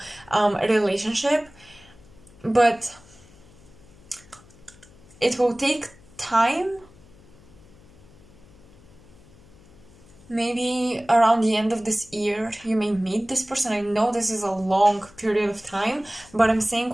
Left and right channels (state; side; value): noise; left; hum, 25 dB below the sound